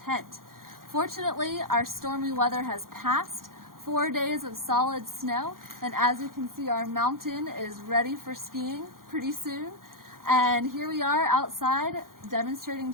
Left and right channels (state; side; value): late; left; 0.91 ms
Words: Fortunately, our stormy weather has passed, 4 days of solid snow, and as you can see our mountain is ready for skiing pretty soon. And here we are outside